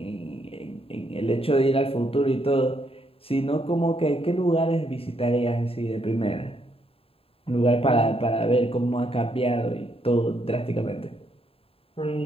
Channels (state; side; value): late; right; 0.27 ms